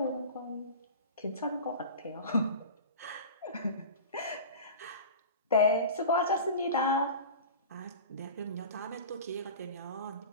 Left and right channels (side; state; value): both; inverted; correlation -0.34